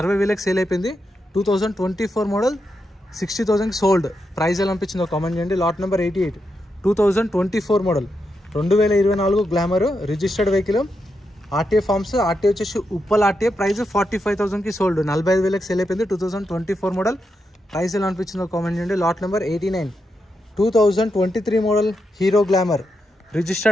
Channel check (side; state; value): both; normal; correlation 0.85